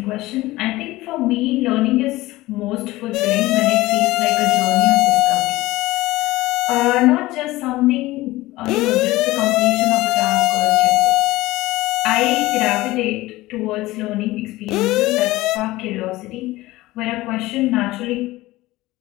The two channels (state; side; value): quieter; right; 18.5 dB